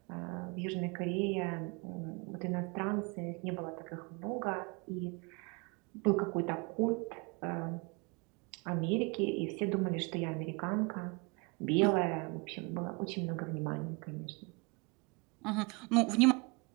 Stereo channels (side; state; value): left; quieter; 29.8 dB